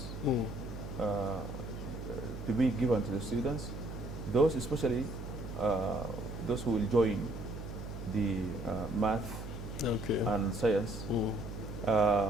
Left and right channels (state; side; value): noise; right; hum, 9 dB below the sound